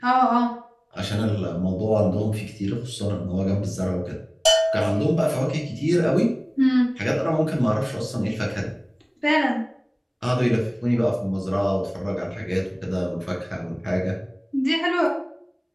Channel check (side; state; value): both; identical; correlation 1.00